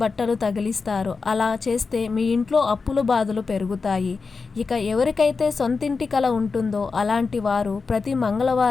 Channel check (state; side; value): quieter; right; 4.6 dB